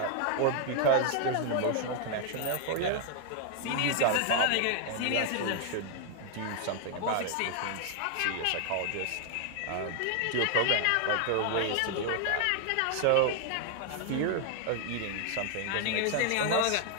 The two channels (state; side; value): different; both; correlation 0.00